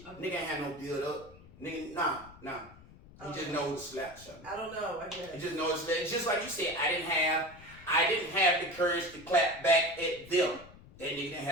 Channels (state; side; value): noise; left; rumble, 21 dB below the sound